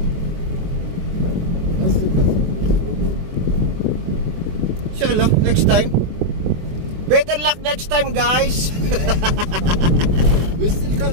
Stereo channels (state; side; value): late; left; 24 ms